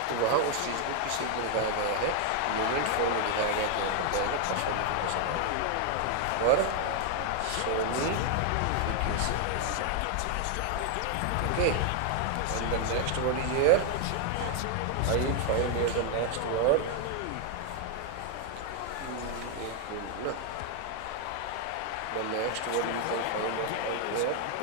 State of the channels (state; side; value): different; both; correlation 0.00